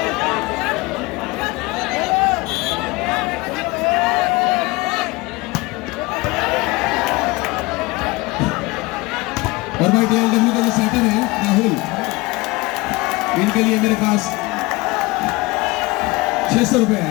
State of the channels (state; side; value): quieter; right; 22.9 dB